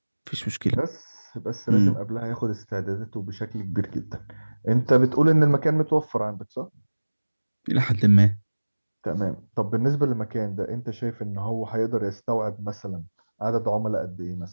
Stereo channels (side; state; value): both; inverted; correlation -1.00